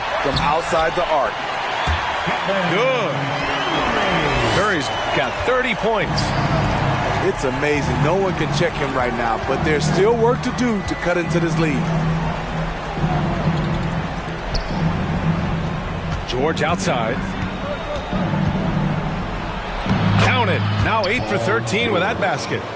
from outside the arc. Good. Curry's got 30 points. It's amazing. No one can check him right now, but there's still work to do to cut into this lead. George outside. Count it. Now 8 for 13 with that basket.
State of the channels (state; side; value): identical; both; correlation 1.00